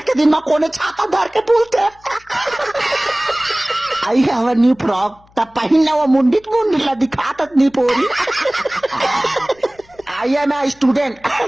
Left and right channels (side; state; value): left; noise; hum, 30 dB below the sound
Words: दिन में कोने छाता धर के बोलते हैं। I have a new frock. तब पहिन वो मुंडित ला दिखात नहीं पोरी। I am a student.